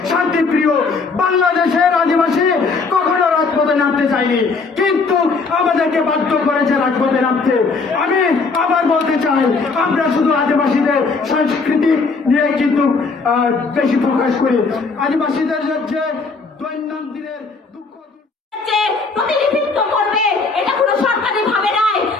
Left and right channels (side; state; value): right; quieter; 4.3 dB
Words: শান্তিপ্রিয়, বাংলাদেশের আদিবাসী কখনো রাজপথে নামতে চায়নি, কিন্তু আমাদেরকে বাধ্য করেছে রাজপথে নামতে। আমি আবার বলতে চাই, আমরা শুধু আদিবাসীদের সংস্কৃতি নিয়ে কিন্তু বেশি প্রকাশ করি। আদিবাসীদের যে দৈনন্দিনের দুঃখ প্রতিনিধিত্ব করবে এটা কোনো সরকারি ভাবে নাই।